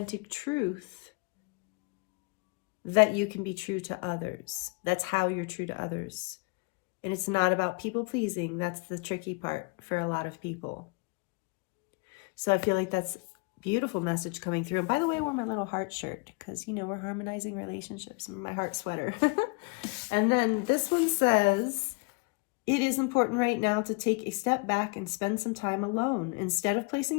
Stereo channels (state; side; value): quieter; right; 29.0 dB